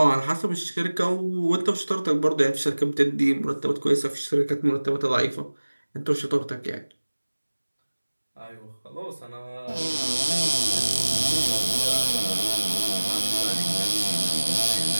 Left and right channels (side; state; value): both; inverted; correlation -1.00